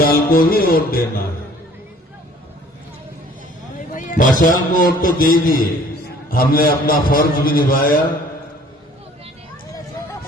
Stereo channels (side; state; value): both; normal; correlation 0.54